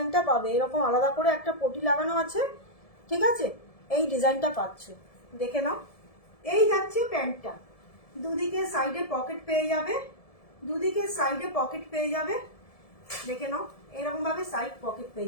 পাবে। এরকম আলাদা করে একটা পটি লাগানো আছে, ঠিক আছে? এই ডিজাইনটা পাচ্ছ, দেখে নাও। এই যাচ্ছে প্যান্টটা, দুদিকে সাইডে পকেট পেয়ে যাবে, দুদিকে সাইডে পকেট পেয়ে যাবে, দেখে নাও এরকম ভাবে সাইড পকেট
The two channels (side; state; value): right; late; 1.7 ms